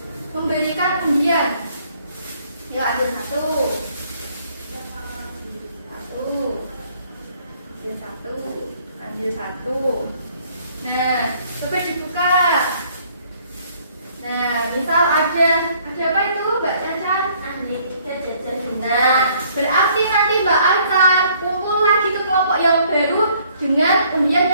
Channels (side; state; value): both; inverted; correlation -0.62